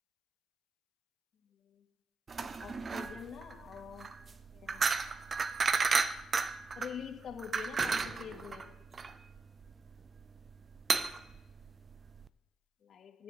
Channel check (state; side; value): quieter; left; 3.9 dB